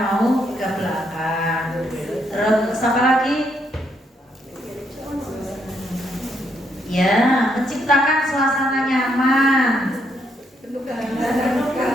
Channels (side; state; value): both; normal; correlation 0.75